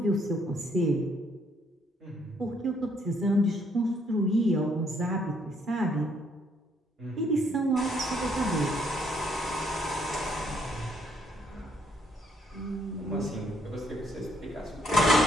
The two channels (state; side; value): normal; both; correlation 0.69